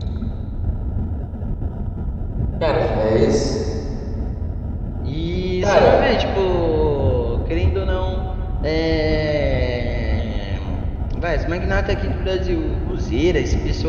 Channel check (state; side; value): identical; both; correlation 1.00